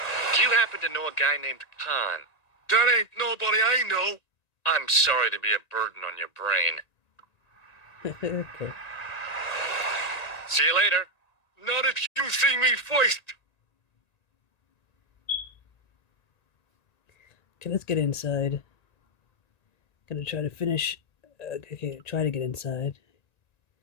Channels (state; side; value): late; right; 1.9 ms